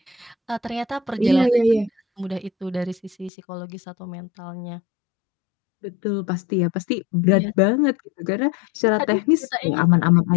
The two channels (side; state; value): right; drops out; at 3.3 s